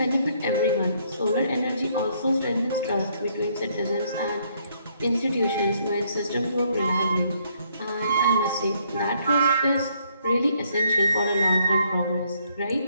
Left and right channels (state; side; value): inverted; both; correlation -0.69